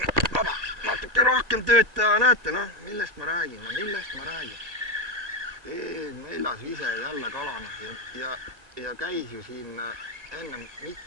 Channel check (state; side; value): late; left; 1.8 ms